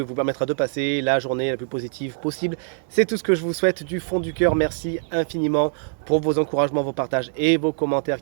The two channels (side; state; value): left; silent; digital silence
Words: vous permettra de passer la journée la plus positive possible. C'est tout ce que je vous souhaite du fond du cœur. Merci infiniment pour vos encouragements, vos partages et vos commentaires